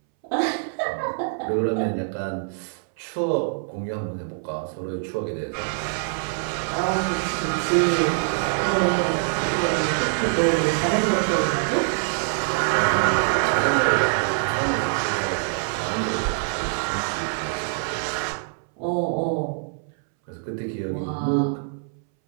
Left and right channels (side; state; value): left; silent; 62 dB below the other